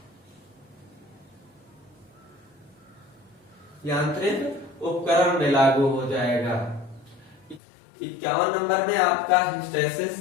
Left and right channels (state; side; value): drops out; right; at 7.6 s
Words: यांत्रिक उपकरण में लागू हो जाएगा। 51 नंबर में आपका